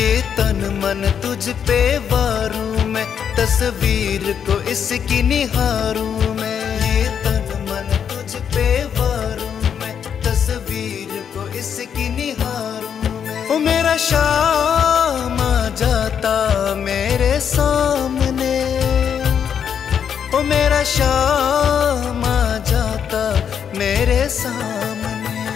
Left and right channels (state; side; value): quieter; right; 7.9 dB